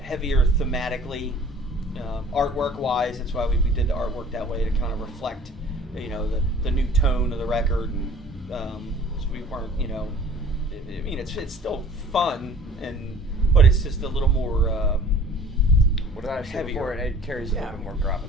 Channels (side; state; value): both; normal; correlation 0.49